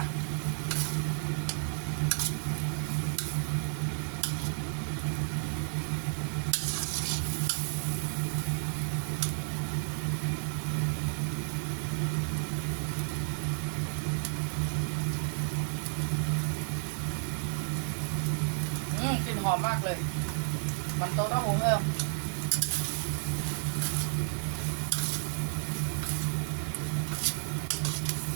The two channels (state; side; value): silent; left; 56 dB below the other